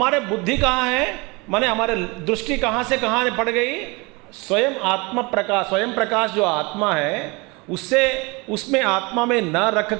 बुद्धि कहाँ है, माने हमारे दृष्टि कहाँ से कहाँ पड़ गई, स्वयं आत्मा प्रकाश, स्वयं प्रकाश जो आत्मा है उससे, उसमें आत्मा में न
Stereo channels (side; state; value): left; quieter; 26.8 dB